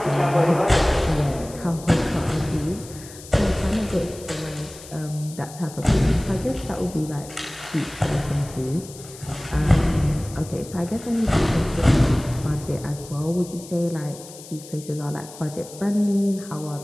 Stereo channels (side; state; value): left; noise; hiss, 17 dB below the sound